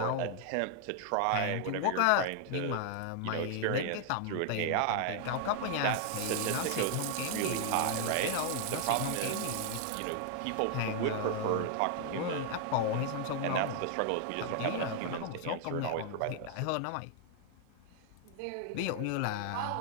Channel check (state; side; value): different; both; correlation 0.00